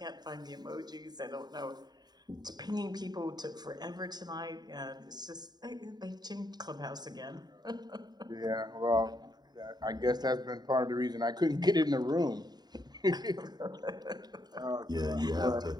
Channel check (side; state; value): left; late; 0.20 ms